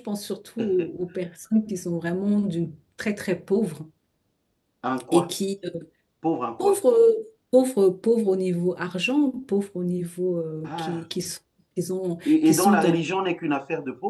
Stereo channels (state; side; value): identical; both; correlation 1.00